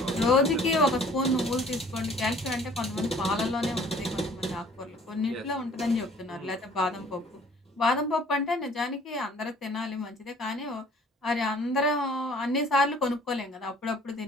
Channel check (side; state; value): both; normal; correlation 0.53